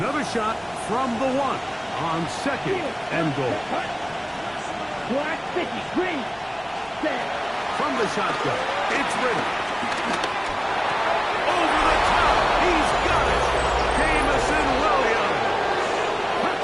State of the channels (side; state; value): both; identical; correlation 1.00